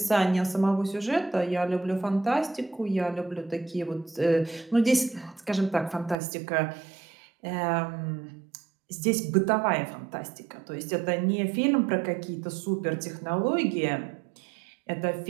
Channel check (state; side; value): drops out; left; at 6.2 s